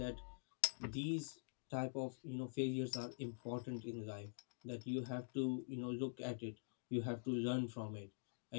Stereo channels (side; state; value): right; silent; digital silence